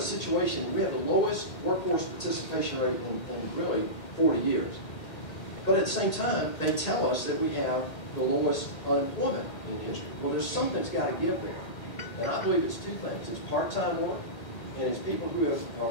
situation, we have the lowest workforce participation rate in really 40 years. But at the same time, they tell us that we have the lowest unemployment in history. Well, there's something that's got to give there. And I believe it's 2 things. It's part-time work, and it's people who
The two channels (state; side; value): late; right; 1.8 ms